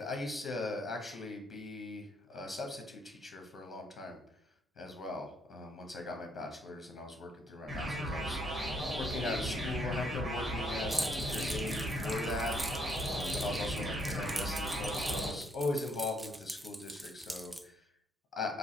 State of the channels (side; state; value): both; normal; correlation 0.70